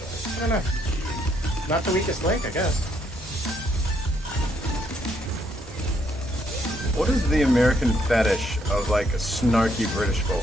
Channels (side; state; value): both; normal; correlation 0.72